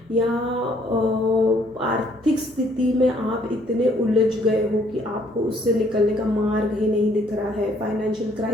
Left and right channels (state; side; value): normal; both; correlation 0.64